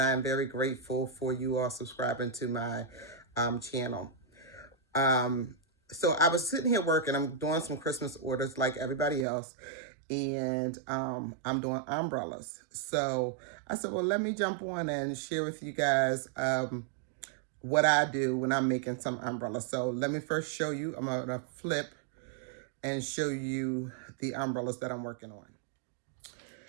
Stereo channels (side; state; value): left; drops out; at 9.2 s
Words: I am very grateful for you all subscribing to my channel. Um, so I was sitting here working. I'm doing some Christmas orders like everybody else, and I'm doing umbrellas. So I said, well, let me jump on and share with you guys what I do when I'm making some umbrellas. So let me first show you. I'm gonna flip and show you the umbrellas that I'm working on.